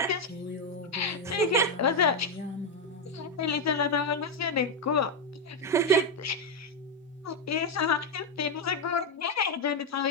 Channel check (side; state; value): both; normal; correlation 0.05